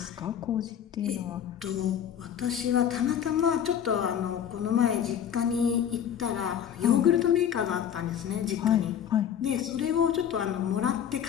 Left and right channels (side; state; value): right; quieter; 9.1 dB